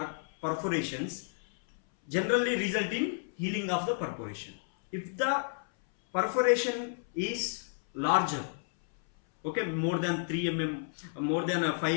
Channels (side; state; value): right; silent; 57 dB below the other